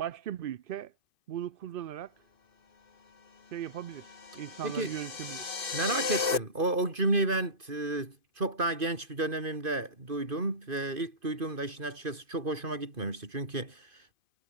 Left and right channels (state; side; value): late; left; 2.5 ms